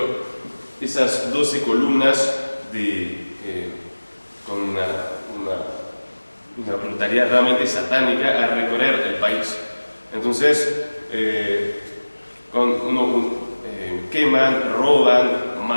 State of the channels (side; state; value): both; inverted; correlation -1.00